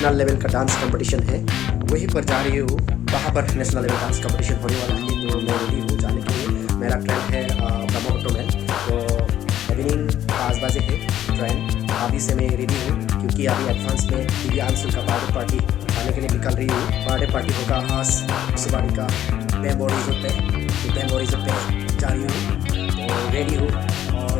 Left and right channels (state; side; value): quieter; right; 11.7 dB